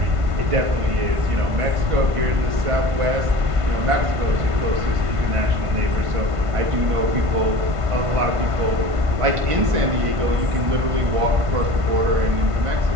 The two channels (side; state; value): left; late; 1.5 ms